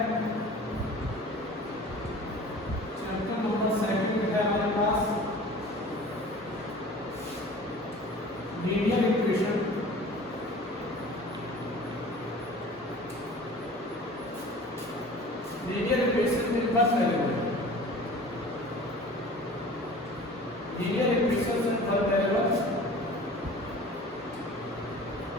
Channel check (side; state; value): both; normal; correlation 0.42